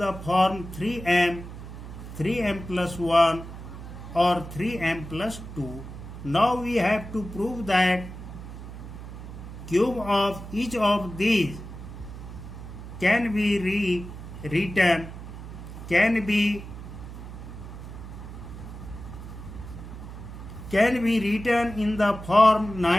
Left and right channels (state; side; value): noise; right; hum, 11 dB below the sound